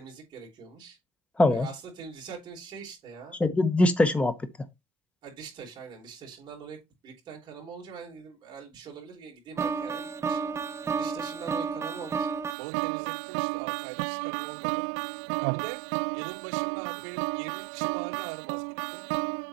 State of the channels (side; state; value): left; drops out; at 12.6 s